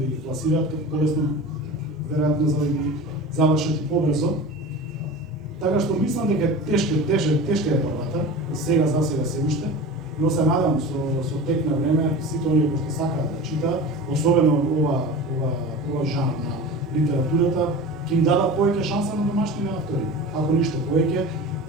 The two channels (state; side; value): normal; both; correlation 0.33